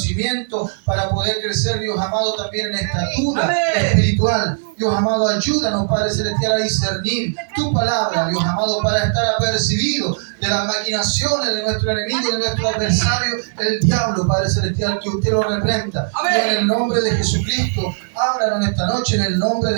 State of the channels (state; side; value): silent; left; digital silence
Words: para poder crecer, Dios amado, también en estatura espiritual. Dios amado, ayúdanos, Padre Celestial, a discernir tu palabra, Dios amado, para estar apercibidos de las maquinaciones de nuestro enemigo y de nuestro adversario, el diablo, Padre Celestial, que usted lo reprenda. Y en el nombre de Jesucristo, háblanos esta noche en el nombre